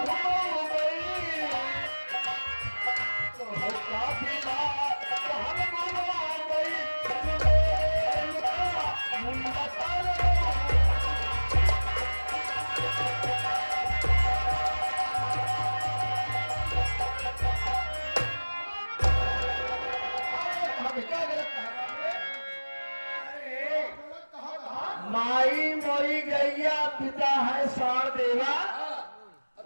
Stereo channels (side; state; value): both; inverted; correlation -1.00